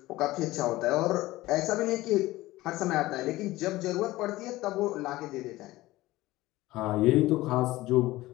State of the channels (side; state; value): right; quieter; 17.9 dB